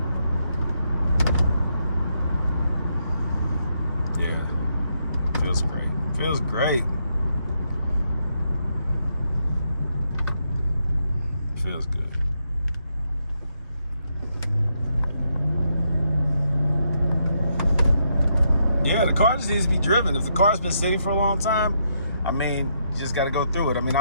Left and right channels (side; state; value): both; inverted; correlation -0.78